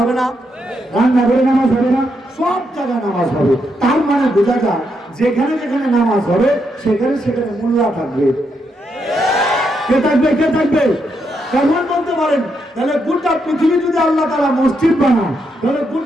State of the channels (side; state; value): both; normal; correlation 0.80